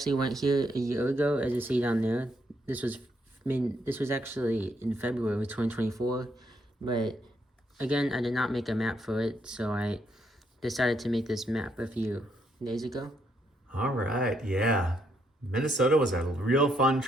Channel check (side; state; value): both; normal; correlation 0.75